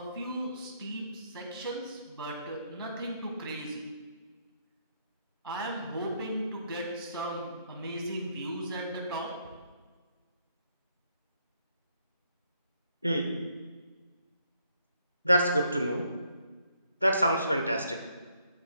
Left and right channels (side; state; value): both; inverted; correlation -0.73